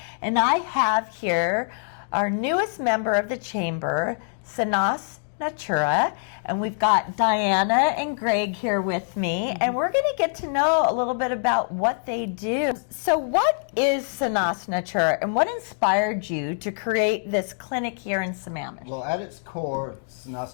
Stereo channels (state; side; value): silent; right; digital silence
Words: And I have here our newest member of the chamber, Sanas Natura, and we've got Diana and Greg here with me, and we're going to get to know a little bit about what they do. So what is Sanas Natura, and what inspired you to create this clinic here in Sammamish? Well, at its core,